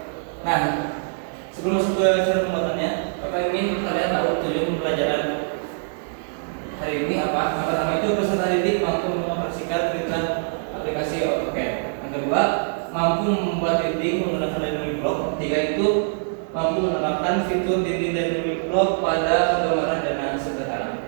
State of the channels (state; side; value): silent; left; 56 dB below the other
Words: Nah, sebelum masuk ke cara pembuatannya, Bapak ingin kalian tahu tujuan pembelajaran hari ini apa? Yang pertama itu peserta didik mampu mengoperasikan perintah aplikasi AutoCAD. Yang kedua, mampu membuat dinding menggunakan dynamic block. Tiga itu mampu menerapkan fitur dinding dynamic block pada penggambaran dana sederhana.